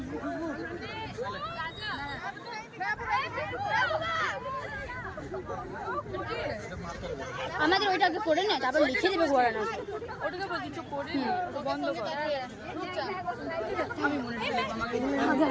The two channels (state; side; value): identical; both; correlation 1.00